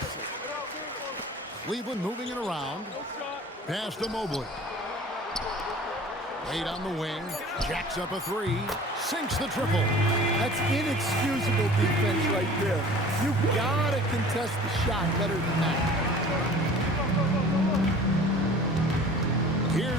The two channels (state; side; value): normal; both; correlation 0.44